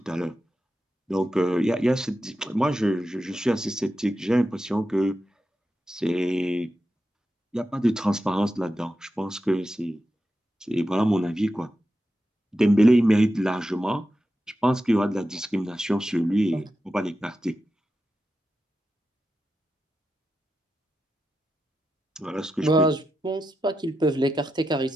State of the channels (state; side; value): normal; both; correlation 0.90